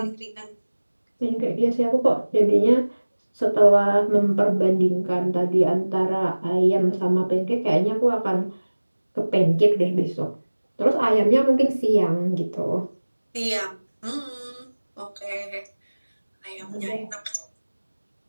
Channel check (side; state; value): both; inverted; correlation -1.00